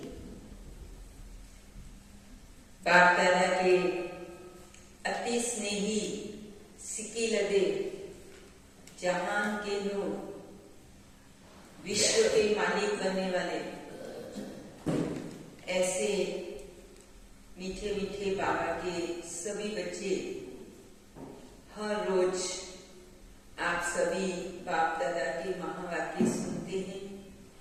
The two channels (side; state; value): both; identical; correlation 1.00